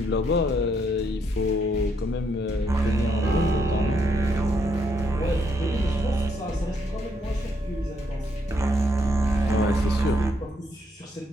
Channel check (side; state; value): both; normal; correlation 0.74